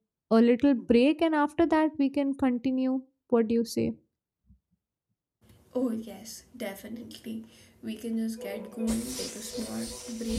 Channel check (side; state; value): both; identical; correlation 1.00